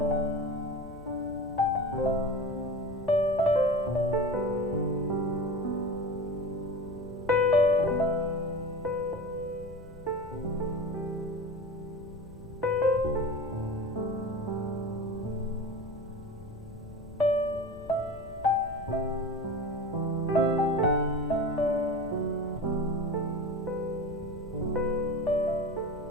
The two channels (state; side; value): noise; left; rumble, 17 dB below the sound